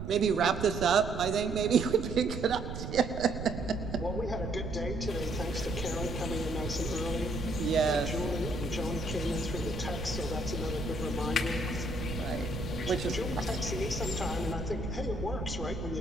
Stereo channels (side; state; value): right; noise; rumble, 6 dB below the sound